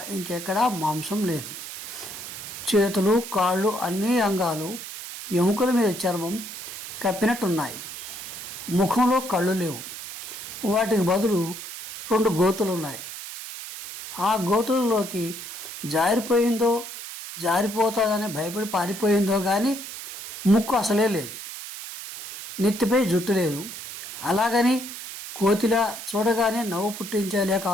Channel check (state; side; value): noise; right; hiss, 10 dB below the sound